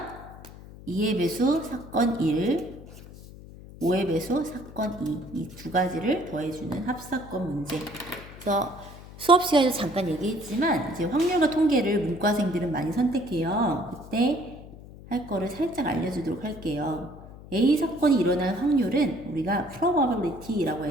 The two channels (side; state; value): left; noise; hum, 17 dB below the sound